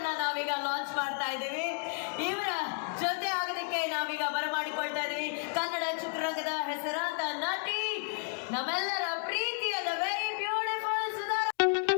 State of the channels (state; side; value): silent; right; 56 dB below the other